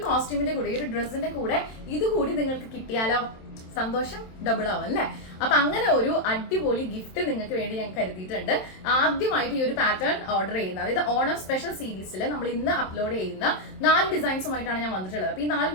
കോസ്റ്റ്യൂമിന്റെ കൂടെ, ഈ ഒരു ഡ്രസ്സിന്റെ കൂടെ ഇത് കൂടി നിങ്ങൾക്ക് കിട്ടിയാലോ സന്തോഷം ഡബിൾ ആവും അല്ലെ. അപ്പൊ അങ്ങനെ ഒരു അടിപൊളി ഗിഫ്റ്റ് നിങ്ങൾക്ക് വേണ്ടി ഞാൻ കരുതിയിട്ടുണ്ട്. ആദ്യമായിട്ട് ഈ ഒരു പാറ്റേൺ ഓർഡർ ചെയ്യുന്ന, അതായത് ഓണം സ്പെഷ്യൽ സീരീസിൽ നമ്മൾ ഇന്ന് അപ്ലോഡ് ചെയ്യുന്ന 4 ഡിസൈൻസുമായിട്ടാണ് ഞാൻ വന്നിട്ടുള്ളത്. അപ്പൊ ഈ 4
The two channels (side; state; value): right; late; 27 ms